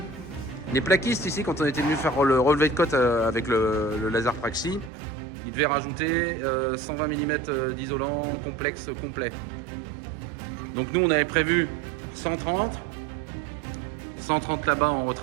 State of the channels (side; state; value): left; drops out; at 4.9 s